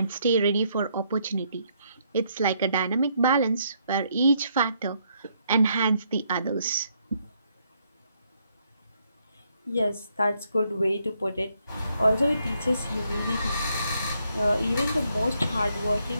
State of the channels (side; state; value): both; inverted; correlation -0.73